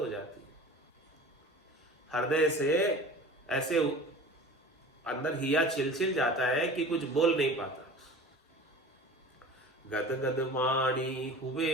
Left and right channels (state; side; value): normal; both; correlation 0.39